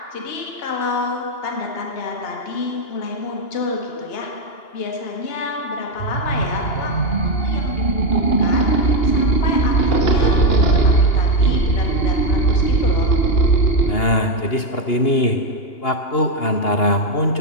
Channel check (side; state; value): right; late; 2.8 ms